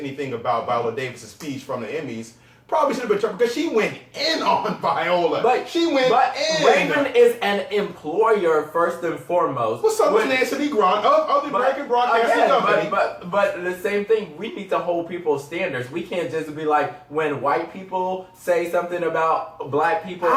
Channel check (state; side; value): identical; both; correlation 1.00